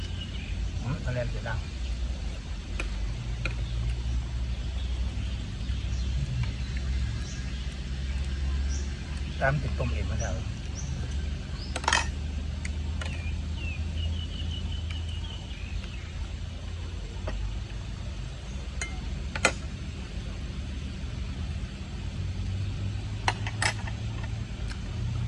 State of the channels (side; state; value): both; identical; correlation 1.00